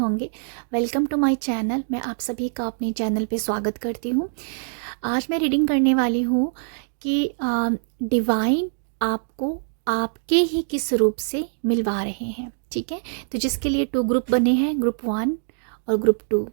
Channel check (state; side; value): silent; left; digital silence